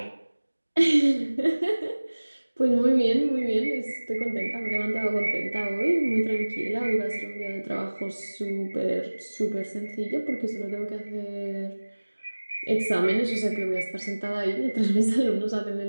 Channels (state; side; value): inverted; both; correlation -1.00